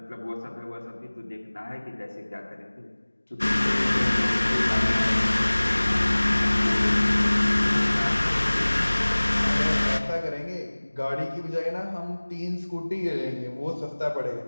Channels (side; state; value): both; inverted; correlation -1.00